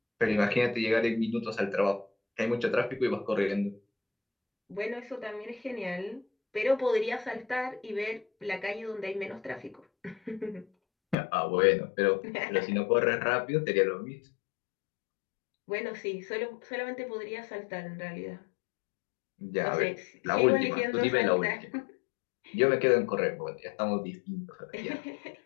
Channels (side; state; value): right; drops out; at 11.2 s